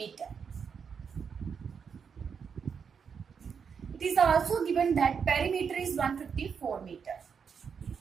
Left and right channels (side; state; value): left; quieter; 6.5 dB